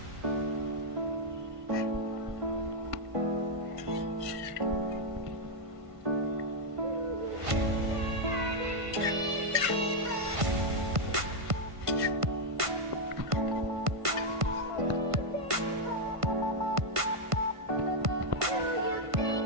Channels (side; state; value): left; late; 1.5 ms